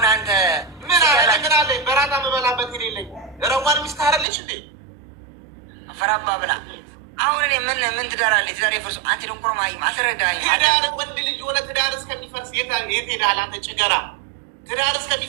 أنت من عليه برانا مبلا بتيري ليلج روان مستهر ليش دي فراب بابلا أولني من تدار اللي تدار يفرس أنت يوم كرو معي ما سر داعي تدار ودي اللي جونا تدار سكني فرس يتدار أنت شجرة تدار سكني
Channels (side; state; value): left; drops out; at 4.2 s